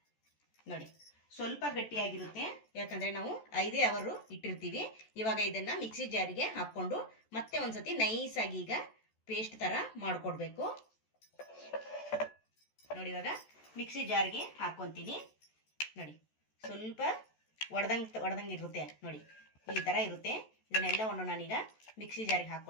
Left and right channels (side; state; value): right; late; 14 ms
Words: ನೋಡಿ, ಸ್ವಲ್ಪ ಗಟ್ಟಿಯಾಗಿರುತ್ತೆ. ಯಾಕಂದರೆ ನಾವು 5 ಅವರ್ ಇಟ್ಟಿರ್ತೀವಿ. ಇವಾಗ ಇದನ್ನು ಮಿಕ್ಸಿ ಜಾರಿಗೆ ಹಾಕ್ಕೊಂಡು ಮತ್ತೆ ಒಂದ್ಸತಿ ನೈಸಾಗಿ ಈಗ ಪೇಸ್ಟ್ ಥರ ಮಾಡಿಕೊಡ್ಬೇಕು. ನೋಡಿ, ಇವಾಗ ಮಿಕ್ಸಿ ಜಾರ್ಗೆ ಹಾಕ್ಕೊತೀನಿ. ನೋಡಿ, ಸ್ವಲ್ಪ ಒಡೆದಂಗೆ ಇರುತ್ತೆ. ನೋಡಿ, ಈ ಥರ ಇರುತ್ತೆ. ಇದನ್ನೆಲ್ಲವನ್ನು ನಾನೀಗ ಮಿಕ್ಸಿ ಜಾರಿಗೆ